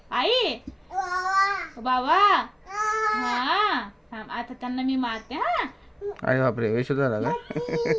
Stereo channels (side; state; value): both; identical; correlation 1.00